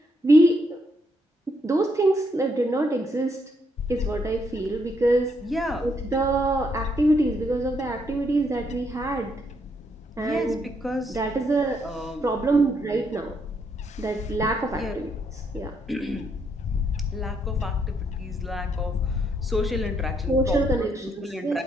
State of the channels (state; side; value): normal; both; correlation 0.75